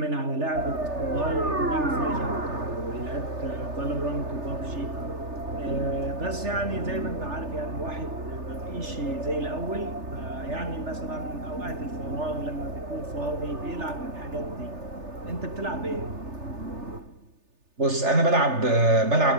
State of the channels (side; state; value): left; late; 3.3 ms